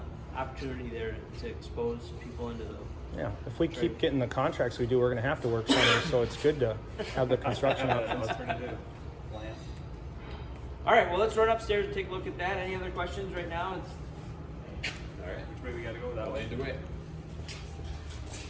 opportunity there to expose people into the. Yeah, if we keep getting the contracts we do, we're going to have to work summer, so it's good to have the construction options. All right, well, let's run upstairs and take a look at that. Any other questions right now? All right, which way we got to go that way? Either way.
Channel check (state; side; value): identical; both; correlation 1.00